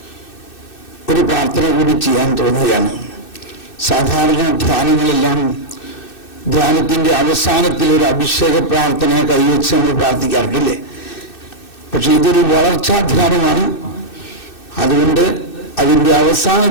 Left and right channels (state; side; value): late; right; 2.6 ms